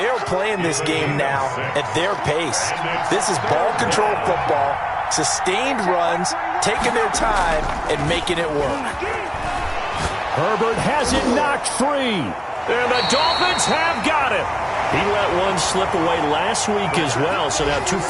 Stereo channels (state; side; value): identical; both; correlation 1.00